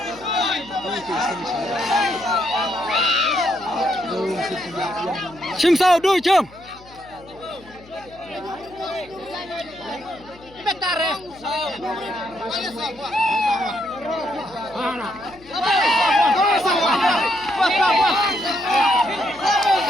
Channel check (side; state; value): left; noise; hum, 23 dB below the sound